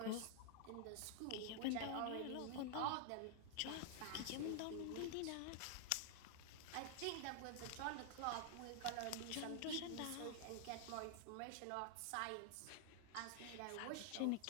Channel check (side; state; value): both; different; correlation 0.00